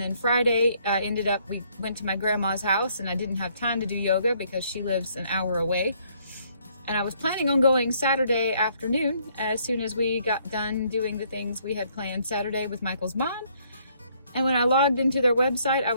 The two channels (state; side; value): inverted; both; correlation -0.67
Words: then Friday we went to my grandma's house, and I didn't have time to do yoga because she lives an hour away. And I was planning on going Saturday afternoon as soon as we got done doing the things we had planned Saturday with Michael's mom. And when I logged into their website, I